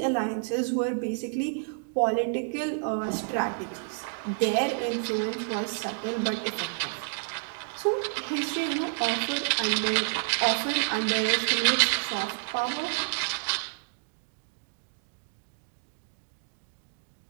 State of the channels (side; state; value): left; silent; digital silence